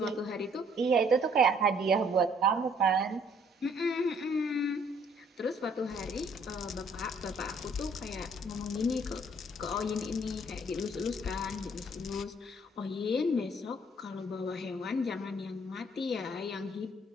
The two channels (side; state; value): both; normal; correlation 0.62